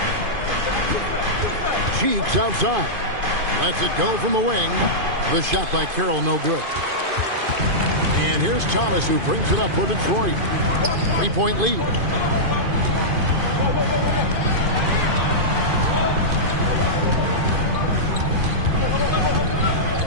Cheeks outside. Lets it go from the wing. The shot by Carroll no good. And here's Thomas who brings it up for Detroit. 3-point lead.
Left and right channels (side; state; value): left; late; 2.5 ms